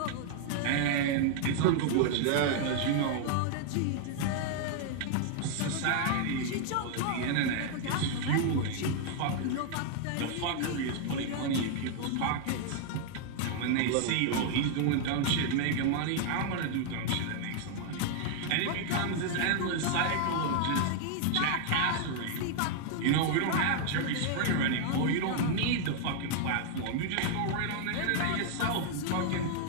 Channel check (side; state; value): both; different; correlation 0.00